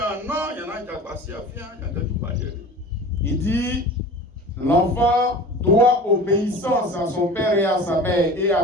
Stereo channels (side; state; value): both; normal; correlation 0.38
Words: dit, l'enfant doit obéissance à son père et à sa mère et